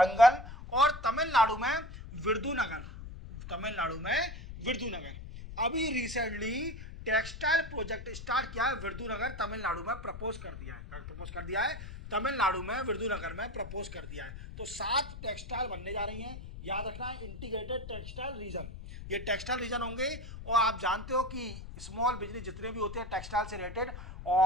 और तमिलनाडु में विरुधुनगर, तमिलनाडु में विरुधुनगर। अभी रिसेंटली टेक्सटाइल प्रोजेक्ट स्टार्ट किया है विरुधुनगर तमिलनाडु में, प्रपोज कर दिया है तमिलनाडु में विरुधुनगर में प्रपोज कर दिया है। तो 7 टेक्सटाइल बनने जा रही हैं, याद रखना है, इंटीग्रेटेड टेक्सटाइल रीजन। ये टेक्सटाइल रीजन होंगे। और आप जानते हो कि स्मॉल बिजनेस जितने भी होते हैं टेक्सटाइल से रिलेटेड,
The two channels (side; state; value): left; noise; rumble, 11 dB below the sound